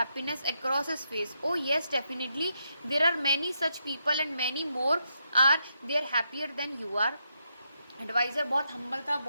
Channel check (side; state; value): both; inverted; correlation -0.81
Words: across his face, oh yes, definitely, there are many such people and many more are there happier than you are. Adviser बहुत हम्बल था,